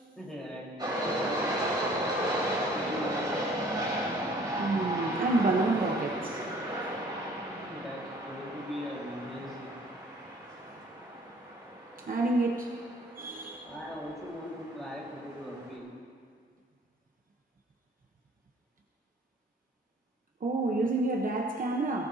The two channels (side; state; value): both; normal; correlation 0.54